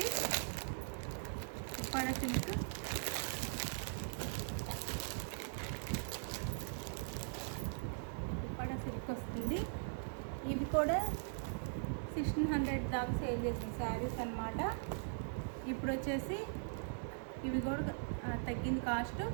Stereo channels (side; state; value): left; silent; digital silence